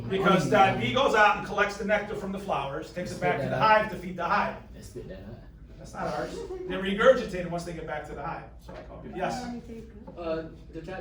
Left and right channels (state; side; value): identical; both; correlation 1.00